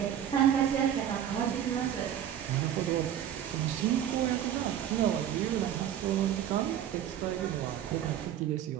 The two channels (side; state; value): left; quieter; 10.2 dB